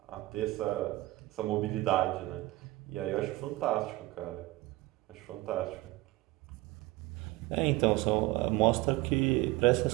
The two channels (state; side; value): quieter; left; 19.5 dB